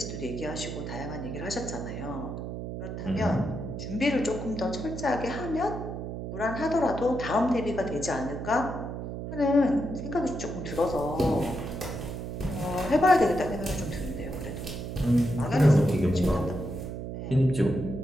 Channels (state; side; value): noise; right; hum, 6 dB below the sound